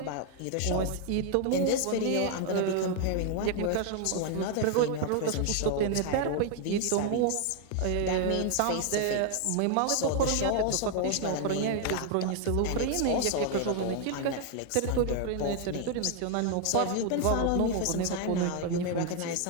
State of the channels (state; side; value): different; both; correlation 0.00